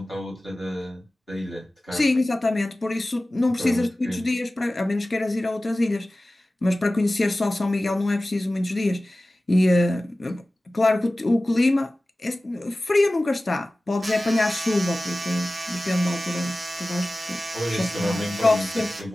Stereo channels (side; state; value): both; normal; correlation 0.97